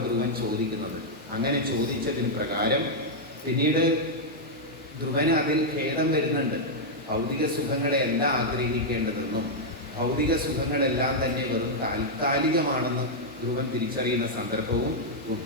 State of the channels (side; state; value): both; normal; correlation -0.04